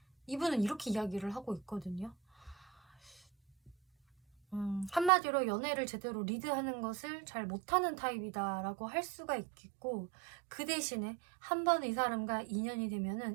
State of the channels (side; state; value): left; drops out; at 5.1 s